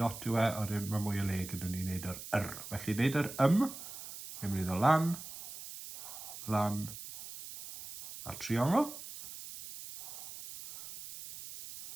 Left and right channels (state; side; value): noise; right; hiss, 12 dB below the sound